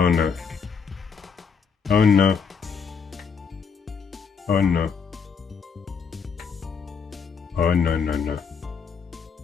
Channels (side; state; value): right; quieter; 5.9 dB